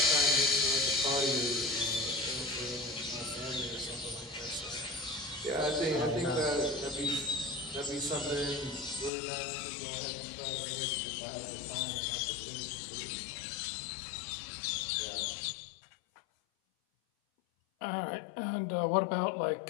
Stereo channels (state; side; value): drops out; right; at 9.1 s